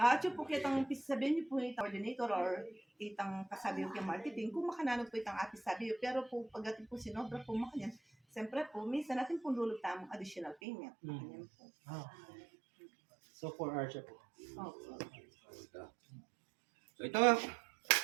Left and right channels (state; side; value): drops out; left; at 10.6 s